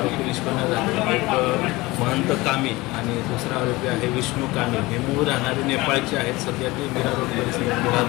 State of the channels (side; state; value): right; quieter; 21.2 dB